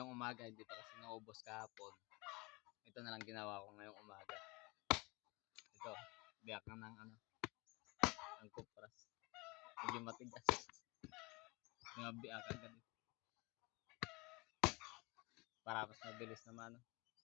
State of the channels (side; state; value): right; quieter; 25.6 dB